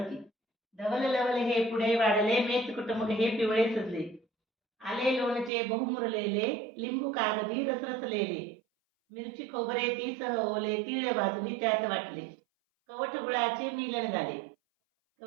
धवल लवल हे पुढे वाढले, मेच कुटुंब हे पिवळे सजले. आले लोणचे बहुमुरलेले, लिंबू कागदी रसरसलेले. मिरची खोबरे ती सह ओले, तीळ भाजली त्यात वाटले. कवठ गुळाचे मिलन झाले,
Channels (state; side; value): drops out; left; at 5.5 s